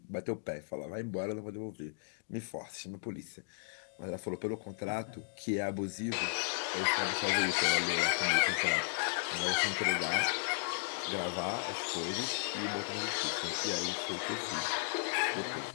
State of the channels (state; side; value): silent; right; digital silence